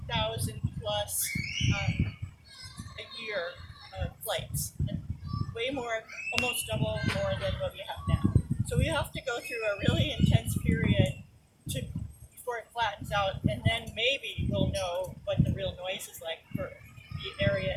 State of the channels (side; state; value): both; identical; correlation 1.00